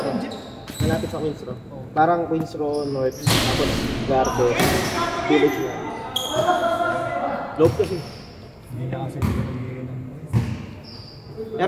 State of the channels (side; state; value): both; identical; correlation 1.00